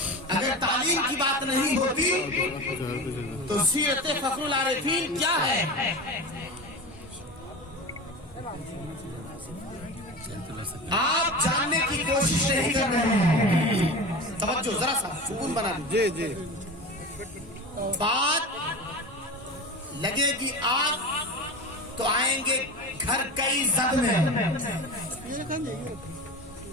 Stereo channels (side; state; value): both; normal; correlation 0.28